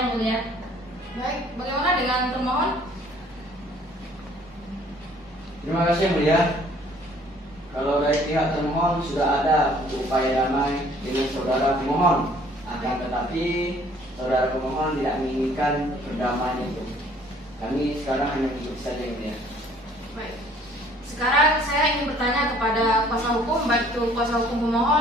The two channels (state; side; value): normal; both; correlation 0.57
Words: mulia. Baik, bagaimana dengan termohon? Terima kasih yang mulia. Kalau dari pihak termohon sudah ada upaya damai dengan saudara pemohon, akan tetapi saudara pemohon tidak menginginkan perdamaian itu. Kami sekarang hanya mengikuti saja yang mulia. Baik. Sekarang saya ingin bertanya kepada kuasa hukum, baik itu kuasa hukum